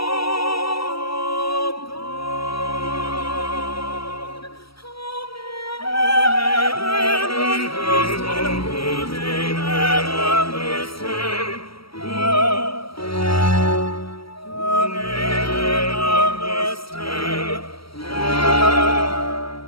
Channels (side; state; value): right; late; 0.75 ms